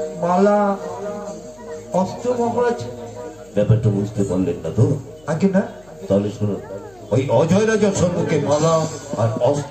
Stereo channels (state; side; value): noise; left; hum, 28 dB below the sound